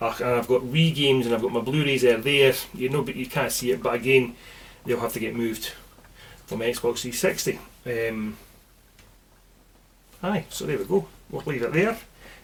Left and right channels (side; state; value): both; identical; correlation 1.00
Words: got Wii games, and I've got my Blu-rays there. You know, but you can't see it, but again, they'll have to get moved from Xbox 360. Aye, so there we go. We'll leave it there.